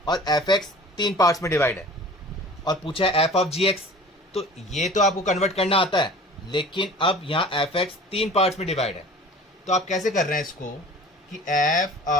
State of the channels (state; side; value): normal; both; correlation 0.43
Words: और fx 3 पार्ट्स में डिवाइड है, और पूछा है f ऑफ gx, तो ये तो आपको कन्वर्ट करना आता है, लेकिन अब यहाँ fx 3 पार्ट्स में डिवाइड है। तो आप कैसे कर रहे हैं इसको कि f